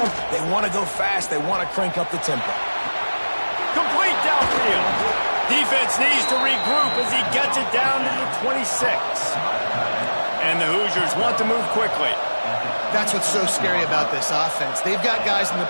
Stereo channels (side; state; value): both; inverted; correlation -1.00